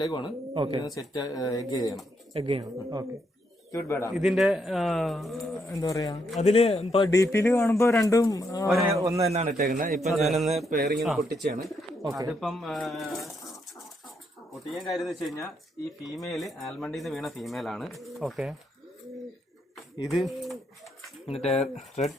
സെറ്റ് എഗ് ചെയ്യണം. ഓക്കെ. ഇതിന്റെ എന്താ പറയാ, അതില് ഇപ്പൊ DP-ല് കാണുമ്പോ രണ്ടും ഒന്ന് തന്നെയാണ് ഇട്ടേക്കുന്നത്. ഇപ്പൊ ഞാനൊന്ന് പെയറിങ്ങിന് പൊട്ടിച്ചാണ്. അതിപ്പം പൊട്ടിക്കാൻ കാര്യം എന്ന് വെച്ച് കഴിഞ്ഞാൽ ഈ ഫീമെയില് ആൽമണ്ടിന്ന് വീണ ഫീമെയിലാണ്. ഓക്കെ. ഇത് മറ്റേ റെഡ്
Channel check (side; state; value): both; normal; correlation 0.77